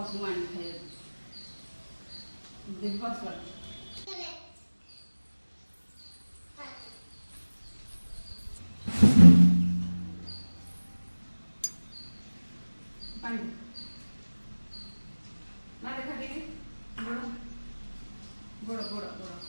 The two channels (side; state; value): both; inverted; correlation -1.00